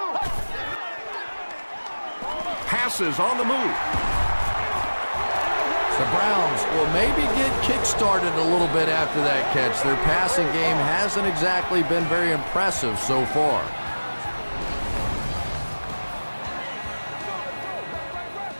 Passes on the move. The Browns will maybe get kick-started a little bit after that catch. Their passing game hasn't exactly been very impressive so far.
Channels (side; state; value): both; inverted; correlation -1.00